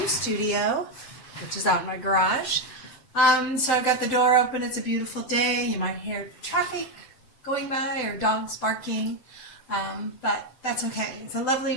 studio, which is out in my garage. So I've got the door open, it's a beautiful day. You might hear traffic going by or dogs barking, but that's okay. It's a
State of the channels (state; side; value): late; right; 7.8 ms